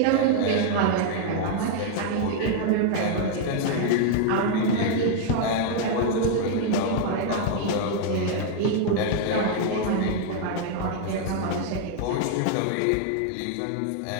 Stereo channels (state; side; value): different; both; correlation 0.00